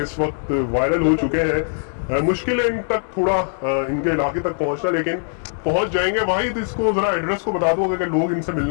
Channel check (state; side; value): silent; right; digital silence